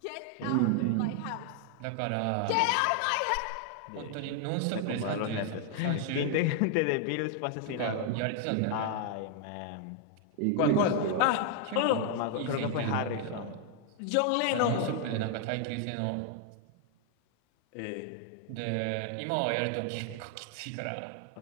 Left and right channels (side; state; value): both; different; correlation 0.00